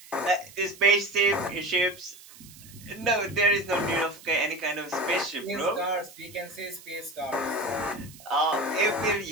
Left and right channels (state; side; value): noise; right; hiss, 20 dB below the sound